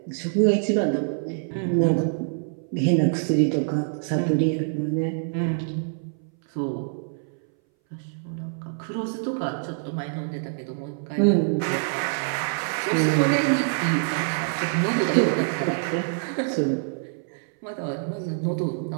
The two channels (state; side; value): silent; left; 60 dB below the other